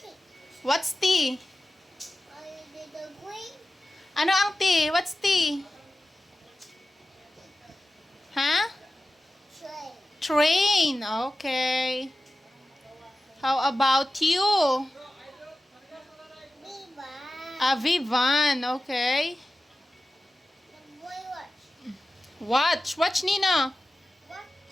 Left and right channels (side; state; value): both; normal; correlation 0.94